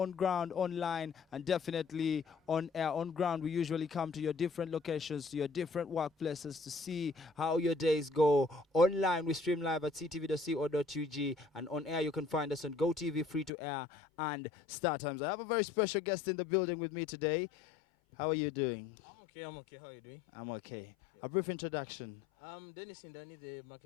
ground, online, and definitely on air. On ground, we usually come to your different locations, to your different workplaces to see how your days go. Online, we stream live at ctv.co.ug, and on air, you can find us on GoTV, free to air, and Star Times. I have a very special guest in the building with me today. How are you doing? I'm okay, I'm okay. How are you doing? I'm okay. A brief introduction. I'm Dennis Indani, the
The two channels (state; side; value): drops out; right; at 13.5 s